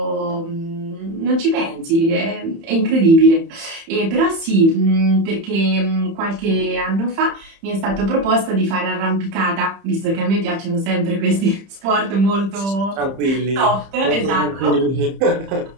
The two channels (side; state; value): left; late; 30 ms